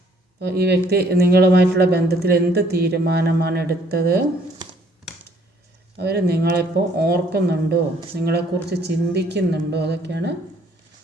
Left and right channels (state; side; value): normal; both; correlation 0.62